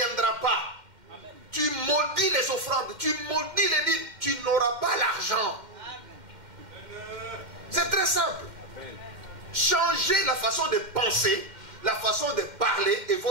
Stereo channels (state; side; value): late; left; 2.1 ms